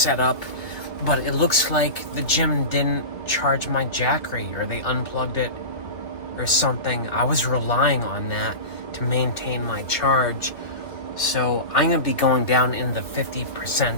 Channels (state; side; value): late; right; 2.6 ms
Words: up, but it looks like the gym didn't charge my Jackery, or they unplugged it or something. I was relying on that to maintain my charge. So I'm going to be going down in the